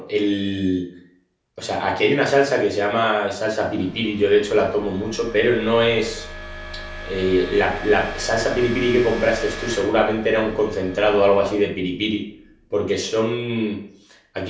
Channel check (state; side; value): identical; both; correlation 1.00